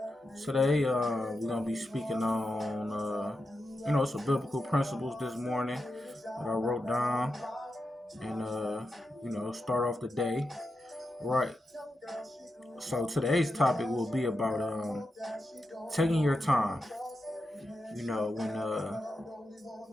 Today, we're going to be speaking on, some biblical principles this morning that I wrote down and, start off the day. Right. So today's topic will be about taking your time. When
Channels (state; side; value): normal; both; correlation 0.88